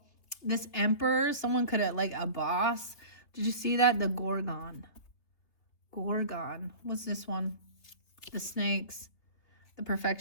This emperor, someone could have, like a boss. Did you see that? The Gorgon. What's this one? The snakes. The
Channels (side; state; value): right; late; 3.3 ms